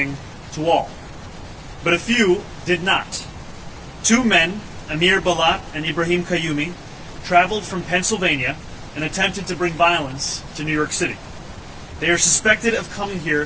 to all. But a few did not. Two men, Amir Balat and Ibrahim Kayumi, traveled from Pennsylvania and attempted to bring violence to New York City. They are suspected of coming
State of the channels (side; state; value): both; identical; correlation 1.00